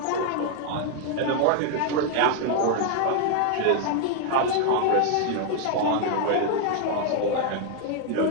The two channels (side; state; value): both; different; correlation 0.00